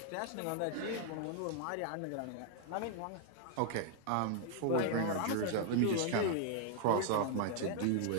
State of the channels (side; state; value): both; different; correlation 0.00